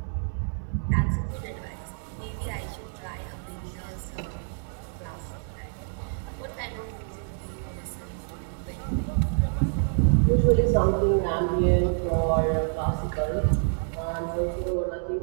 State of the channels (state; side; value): silent; left; 60 dB below the other